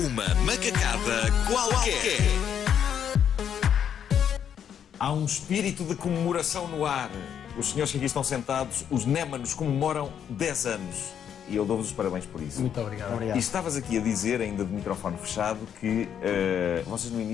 macacada qualquer. Há um espírito de comemoração no ar. Os senhores que aqui estão sentados, os Némanos, comemoram 10 anos. E eu dou-vos os parabéns por isso. Muito obrigado. E estavas aqui a dizer, ainda de microfone fechado, que vocês no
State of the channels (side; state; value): right; quieter; 8.7 dB